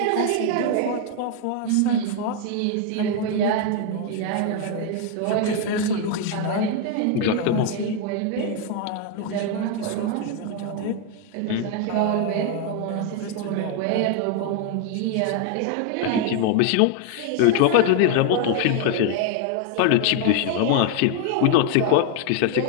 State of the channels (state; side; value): different; both; correlation 0.00